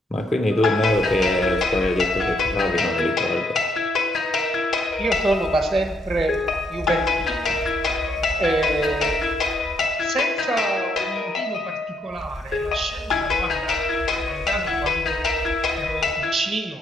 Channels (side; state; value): both; normal; correlation 0.74